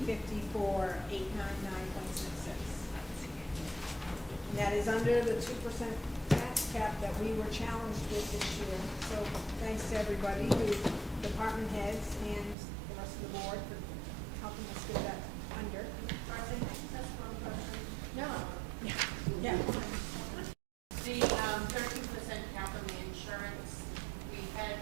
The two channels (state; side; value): drops out; left; at 12.6 s